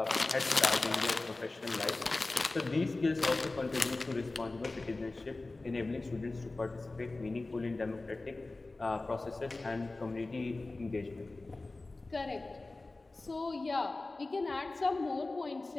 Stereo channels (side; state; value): right; quieter; 3.2 dB